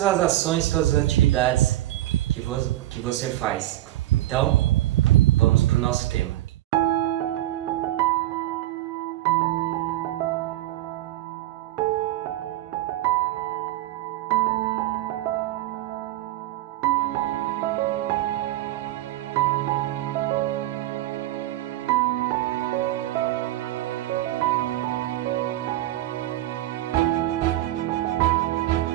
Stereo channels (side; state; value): left; quieter; 15.2 dB